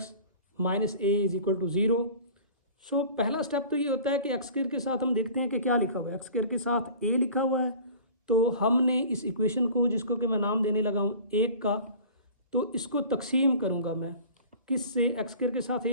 minus a is equal to 0। So पहला स्टेप तो ये होता है कि x² के साथ हम देखते हैं कि क्या लिखा हुआ है, x² के साथ a लिखा हुआ है, तो हमने इस इक्वेशन को, जिसको कि मैं नाम देने लगा हूँ 1 का, तो इसको तकसीम करूँगा मैं किस से, x² के साथ a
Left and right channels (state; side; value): inverted; both; correlation -0.42